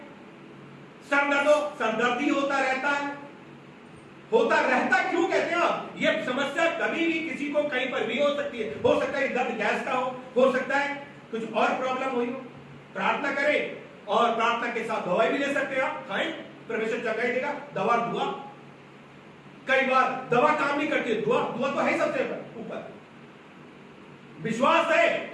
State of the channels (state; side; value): identical; both; correlation 1.00